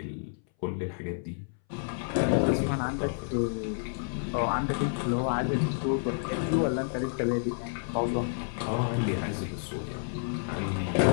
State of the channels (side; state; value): right; silent; 58 dB below the other